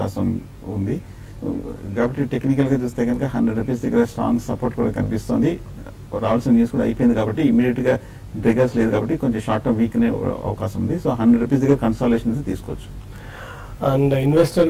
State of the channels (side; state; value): both; identical; correlation 1.00